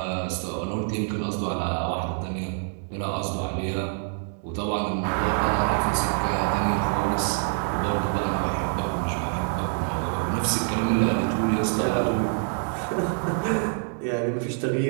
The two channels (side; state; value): left; silent; 61 dB below the other